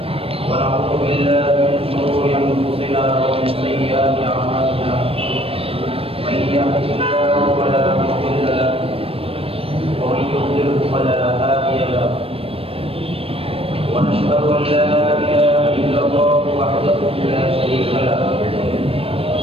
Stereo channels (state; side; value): late; left; 0.28 ms